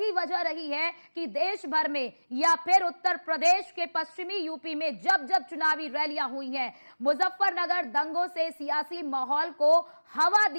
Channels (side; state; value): both; inverted; correlation -1.00